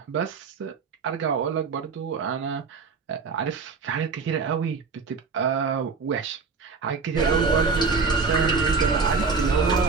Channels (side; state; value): left; quieter; 4.8 dB